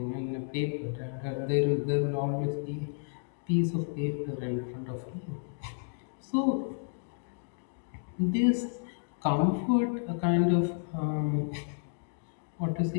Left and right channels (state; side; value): silent; right; digital silence